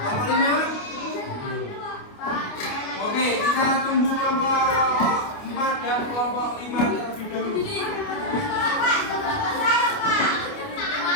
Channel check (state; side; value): late; right; 29 ms